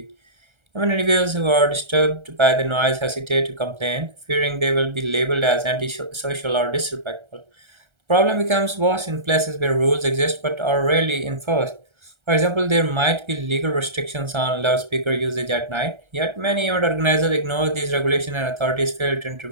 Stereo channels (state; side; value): late; left; 1.3 ms